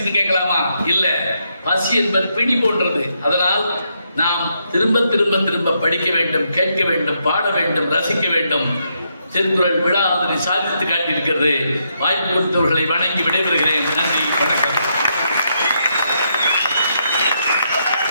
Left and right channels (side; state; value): both; inverted; correlation -0.78